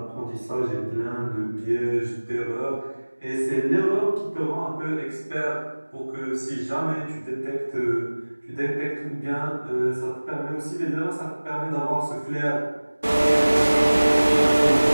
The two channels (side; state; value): both; inverted; correlation -1.00